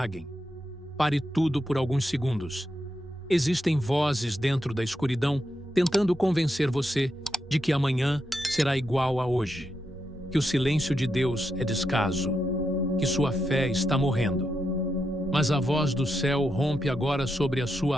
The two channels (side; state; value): both; normal; correlation 0.84